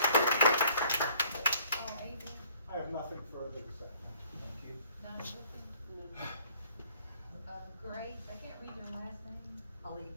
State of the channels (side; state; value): both; inverted; correlation -0.58